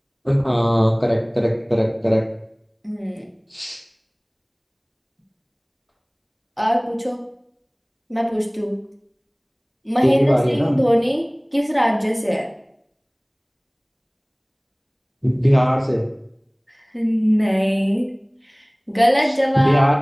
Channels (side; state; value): both; identical; correlation 1.00